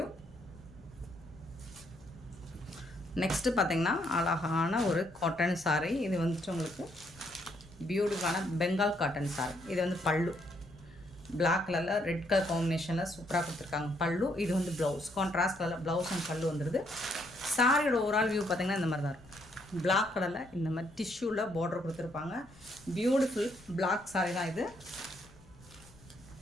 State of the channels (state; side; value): noise; left; rumble, 24 dB below the sound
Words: நெக்ஸ்ட்டு பார்த்திங்கன்னா அழகான ஒரு காட்டன் சாரி. இது வந்துட்டு உங்களுக்கு பியூட்டிஃபுல்லான பெங்கால் காட்டன் சாரி. இது வந்து பல்லு பிளாக் கலரில் ரெட் கலர் காம்பினேஷனில் சூப்பராக கொடுத்துருக்காங்க பல்லு. இது வந்து ப்ளவுஸ், கான்ட்ராஸ்ட் கலரில் ப்ளவுஸ் அண்ட் பல்லு வந்துடுது. சாரியோட ஓவரால் வியூ பார்த்திங்கன்னா இந்த மாதிரி தான் இருக்கும். பிளாக் கலரில் இந்த மாதிரி டிஷ்யூவில் பார்டர் கொடுத்துருப்பாங்க. பியூட்டிஃபுல் பிளாக் சாரி தான் இது.